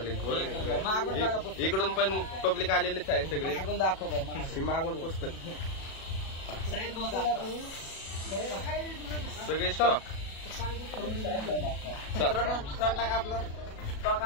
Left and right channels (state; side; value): late; right; 37 ms